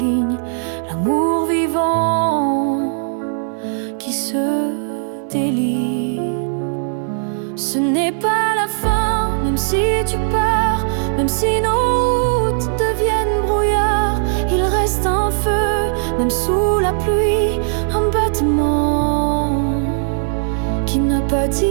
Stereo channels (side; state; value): left; silent; 67 dB below the other